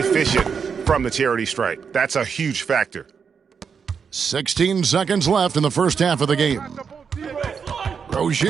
from the charity stripe. That's a huge factor. 16 seconds left in the first half of the game.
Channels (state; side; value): quieter; left; 6.3 dB